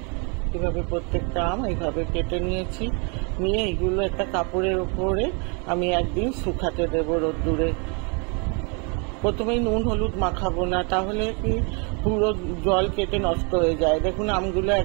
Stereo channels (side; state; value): left; quieter; 34.4 dB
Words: এভাবে প্রত্যেকটা আম এইভাবে কেটে নিয়েছি। নিয়ে এগুলো একটা কাপড়ের উপরে আমি একদিন শুকাতে দেবো রোদ্দুরে। প্রথমেই নুন হলুদ মাখাবো না, তাহলে কি পুরো জল কেটে নষ্ট হয়ে যায়। দেখুন আমগুলো